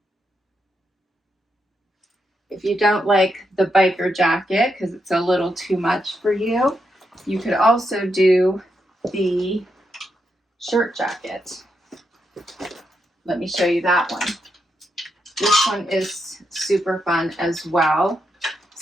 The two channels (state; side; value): normal; both; correlation 0.83